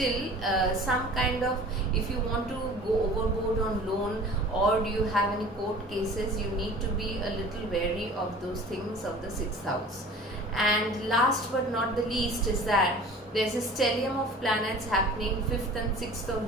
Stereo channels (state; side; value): normal; both; correlation 0.43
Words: some kind of, if you want to go overboard on loan, or do you have any court cases, you need to be a little wary of those things of the 6th house. And last but not the least is that there's a stellium of planets happening 5th and 6th